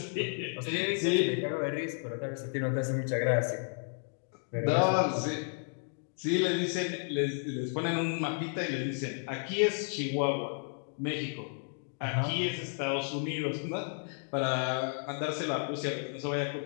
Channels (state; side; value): silent; right; 56 dB below the other